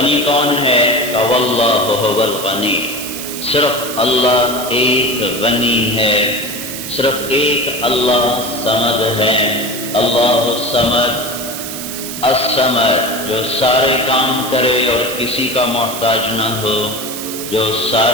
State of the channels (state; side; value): noise; right; hiss, 8 dB below the sound